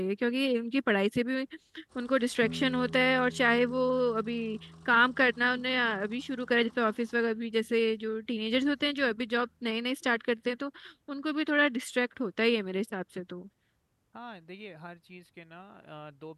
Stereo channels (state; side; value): identical; both; correlation 1.00